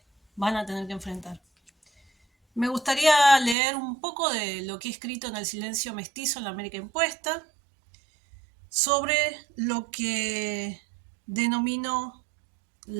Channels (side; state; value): left; drops out; at 3.6 s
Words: van a tener que enfrentar. Me gustaría leer un poco de lo que he escrito en El silencio mestizo en la América impuesta sobre lo que denomino